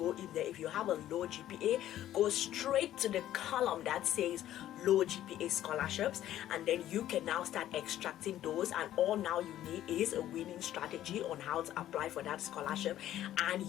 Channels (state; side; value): quieter; right; 12.7 dB